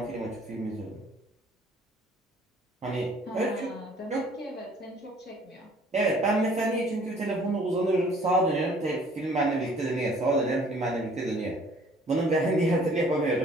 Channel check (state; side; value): normal; both; correlation 0.56